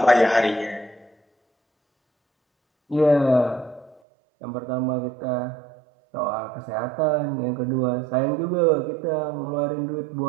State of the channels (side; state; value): left; drops out; at 4.0 s